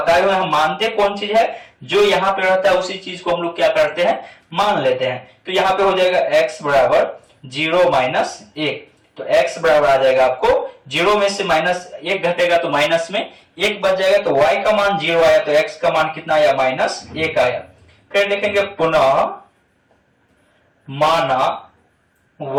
हुए हम मानते कौन चीज है, जो यहाँ पे रहता है उसी चीज को हम लोग क्या करते हैं, मान लेते हैं। तो यहाँ पे हो जाएगा x बराबर 0 माइनस 1। तो x बराबर आ जाएगा आपको 0 में से माइनस 1 घटेगा तो माइनस में 1 बच जाएगा। तो y का मान 0 आया तो x का मान कितना आया, माइनस 1 आया। फिर देखेंगे पुनः माना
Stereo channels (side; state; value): both; identical; correlation 1.00